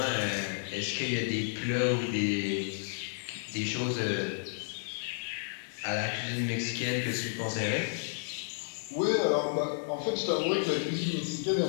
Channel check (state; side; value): silent; right; digital silence